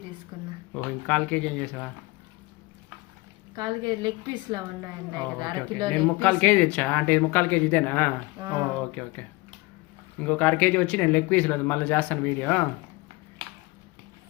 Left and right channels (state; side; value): quieter; right; 23.5 dB